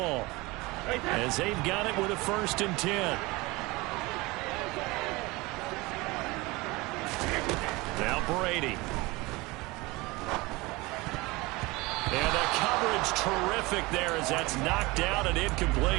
as they've got it with a 1st and 10. Now Brady. And the coverage terrific there as that's knocked out and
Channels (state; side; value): quieter; left; 22.9 dB